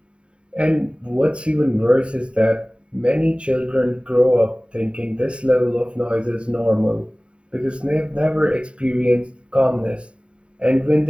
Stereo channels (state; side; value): late; left; 0.056 ms